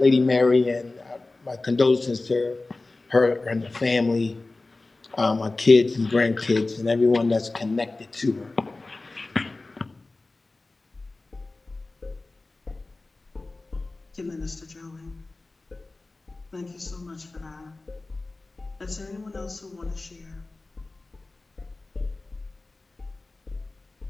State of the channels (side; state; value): right; quieter; 3.2 dB